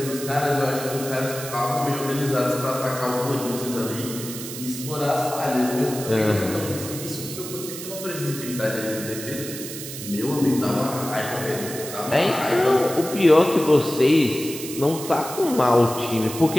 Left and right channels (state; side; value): noise; right; hiss, 10 dB below the sound